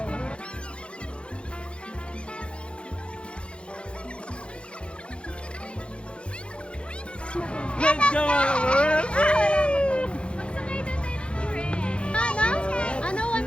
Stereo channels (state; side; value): late; right; 0.058 ms